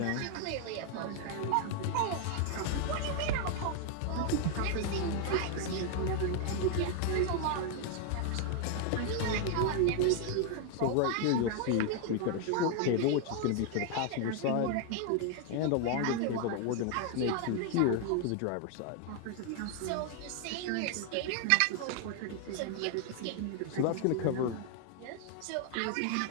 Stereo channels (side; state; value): both; different; correlation 0.00